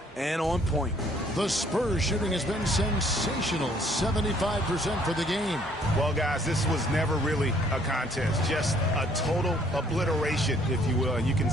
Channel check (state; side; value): normal; both; correlation 0.62